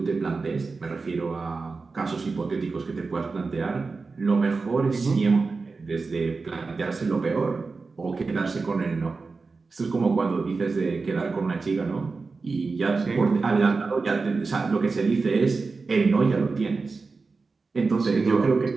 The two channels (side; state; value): left; quieter; 4.2 dB